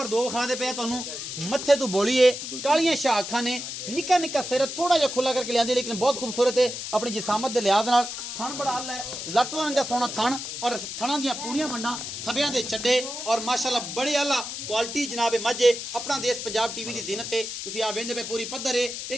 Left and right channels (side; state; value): left; noise; hiss, 7 dB below the sound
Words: 2 विखा दे पे तुहानू। मत्थे तो बोली है, कालियां शाह अखां ने, निक्का निक्का सिर थोड़ा जिहा खुला करके लिया लेकिन बहुत खूबसूरत है अपनी जिसामत के लिहाज नाल। थन बड़ा हल है, लट रंगा सोना थन और थणा दियां पूरियां वंडां, थबियां दे चड्डे और माशाअल्लाह बड़े आला क्वालिटी जनाब मझ है। अपना देश पंजाब टीवी की जीनत है। तुसीं आ वेंदे पे पूरी पद्धर है,